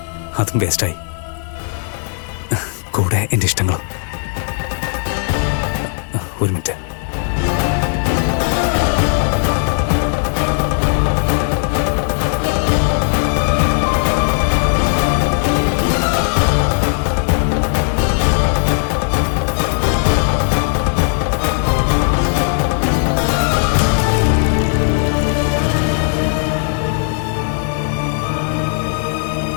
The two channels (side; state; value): right; silent; digital silence